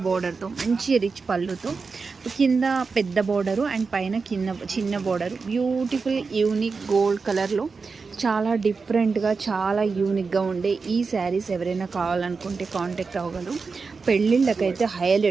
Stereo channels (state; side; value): quieter; left; 4.7 dB